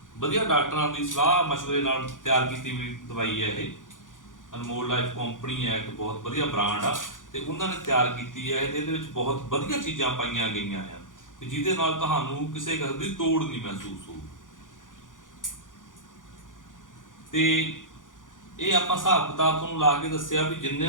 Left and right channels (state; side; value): late; right; 0.88 ms